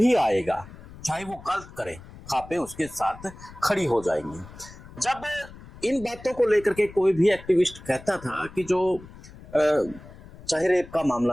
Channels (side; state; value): left; noise; rumble, 18 dB below the sound